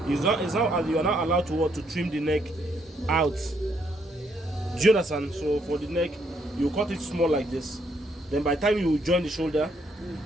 you are not allowed to trim the neck out. Do you understand? So for the neck, you cut it small like this. Then by the time you join the shoulder,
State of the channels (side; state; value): both; normal; correlation 0.72